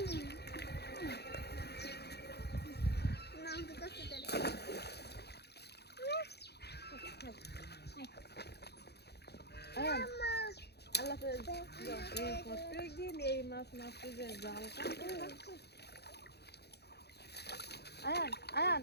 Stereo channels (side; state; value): right; late; 0.48 ms